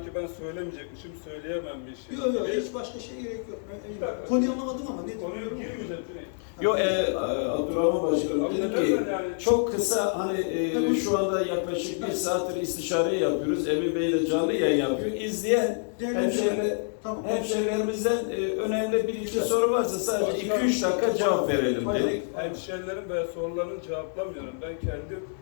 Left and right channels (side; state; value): right; silent; 60 dB below the other